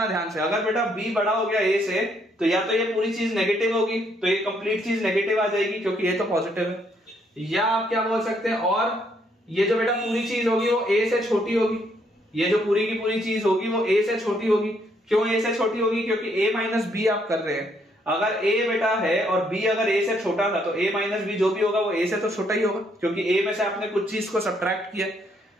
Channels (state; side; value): normal; both; correlation 0.71